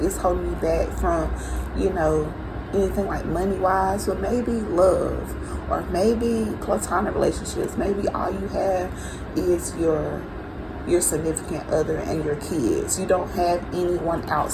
it's holding you back from, anything like money-wise, but maybe love, or maybe platonic relationships. Maybe all you have is your significant other and your kids. You don't have anyone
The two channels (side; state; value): both; identical; correlation 1.00